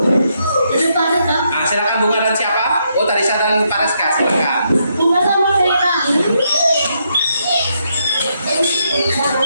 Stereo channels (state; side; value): inverted; both; correlation -0.78